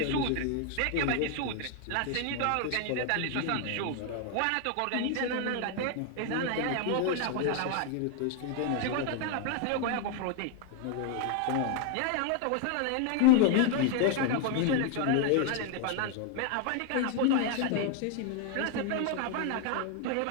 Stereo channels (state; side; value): different; both; correlation 0.01